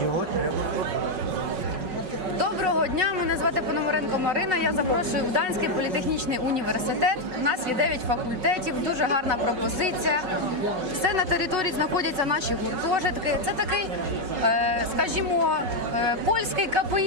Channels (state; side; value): late; left; 5.4 ms